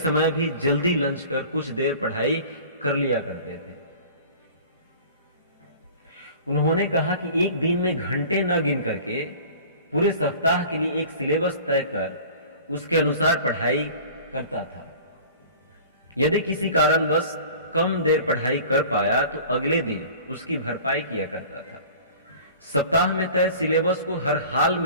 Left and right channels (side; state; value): both; inverted; correlation -0.43